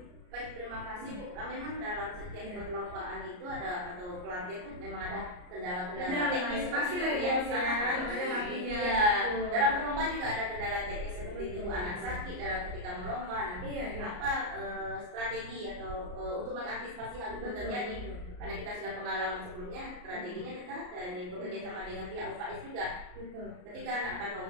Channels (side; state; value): left; late; 34 ms